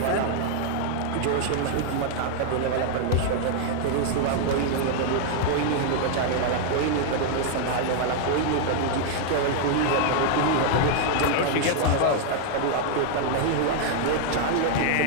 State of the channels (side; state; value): both; different; correlation 0.00